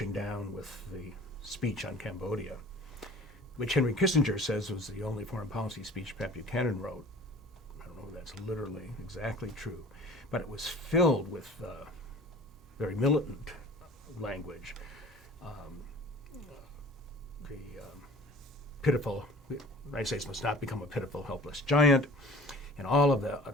down with the speech on Cambodia, which Henry Kissinger says was the only foreign policy speech Pat Buchanan wrote. I don't know if that's literally exactly true, but it was filled with very militant language. Pitiful, the United States must not become a pitiful, helpless giant, and all of the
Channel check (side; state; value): both; normal; correlation 0.46